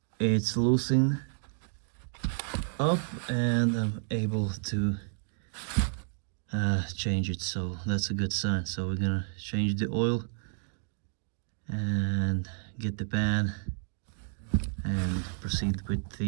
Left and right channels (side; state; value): left; silent; digital silence